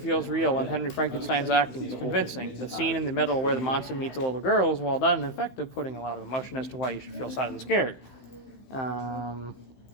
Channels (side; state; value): right; late; 15 ms